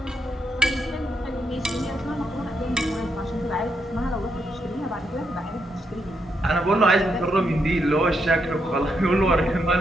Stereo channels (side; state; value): both; normal; correlation 0.80